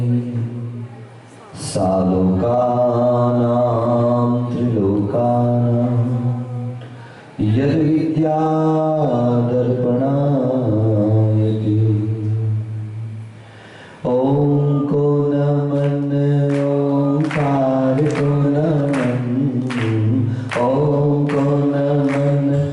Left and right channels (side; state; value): both; identical; correlation 1.00